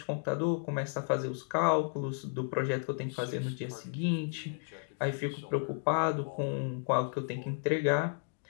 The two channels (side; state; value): right; silent; digital silence